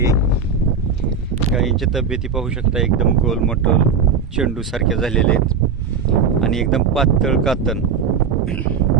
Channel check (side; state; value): left; quieter; 5.7 dB